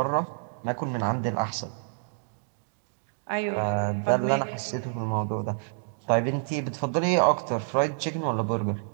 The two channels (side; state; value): left; silent; digital silence